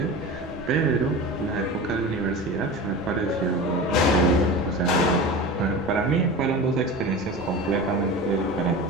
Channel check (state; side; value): normal; both; correlation 0.31